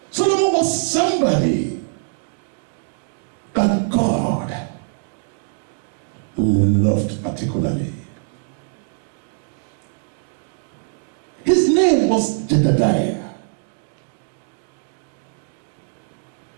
Solomon was somebody that God loved particularly. His name was Jedediah.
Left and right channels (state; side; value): silent; left; digital silence